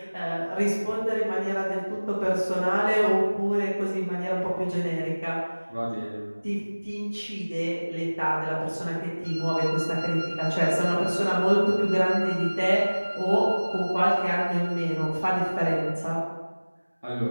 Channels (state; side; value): inverted; both; correlation -1.00